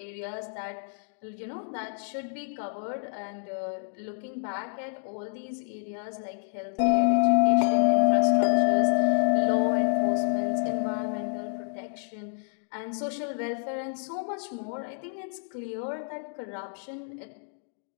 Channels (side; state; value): right; silent; digital silence